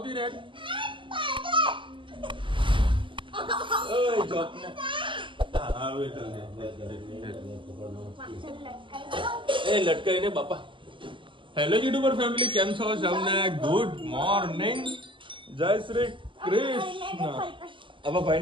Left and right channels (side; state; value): left; late; 0.24 ms